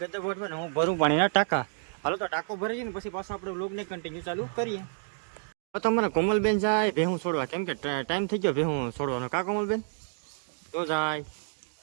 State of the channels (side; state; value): left; silent; digital silence